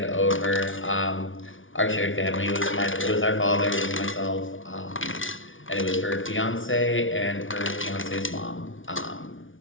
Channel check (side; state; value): right; late; 0.57 ms